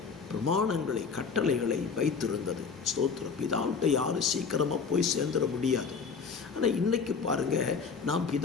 பிரமாணங்களை, கட்டளைகளை வைத்திருந்தது. ஸ்தோத்திரம். பிதாவிட்ட யாரும் சீக்கிரமாக போய் சேர்ந்துட முடியாது. ஆனால் இன்றைக்கி பாருங்கள், நாம்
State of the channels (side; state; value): right; quieter; 5.5 dB